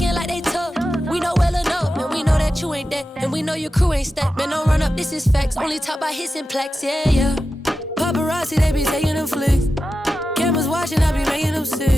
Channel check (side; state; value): both; normal; correlation 0.92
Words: like they tough, we know well enough. And we know that you ain't that, and we know your crew ain't stacked. Man, don't run up, this is facts. Only talk by hits and plaques, yeah. Paparazzi, they be taking them flicks. Cameras watching, I be making them